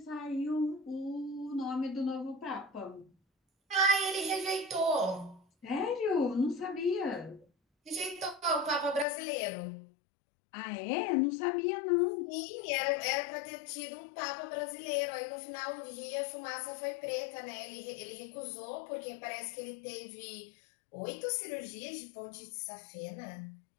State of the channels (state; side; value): drops out; right; at 9.1 s